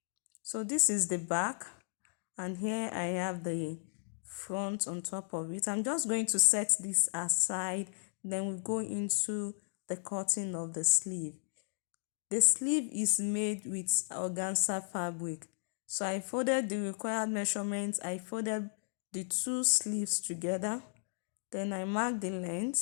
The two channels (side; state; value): right; silent; digital silence